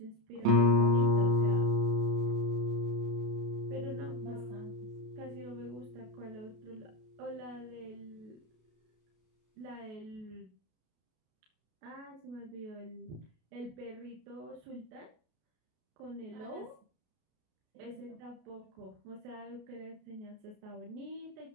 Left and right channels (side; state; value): left; late; 33 ms